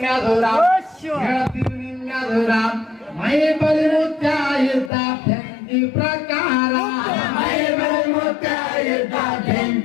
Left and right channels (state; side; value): drops out; right; at 4.9 s